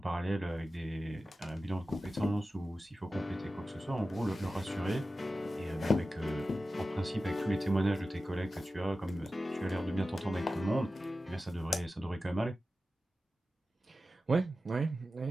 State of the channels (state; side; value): normal; both; correlation 0.94